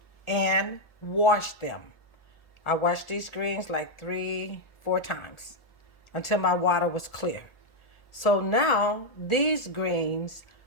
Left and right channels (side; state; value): right; late; 1.4 ms